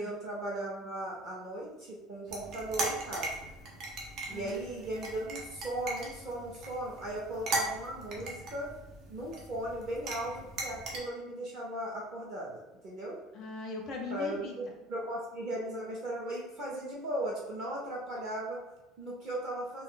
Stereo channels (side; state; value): both; normal; correlation 0.47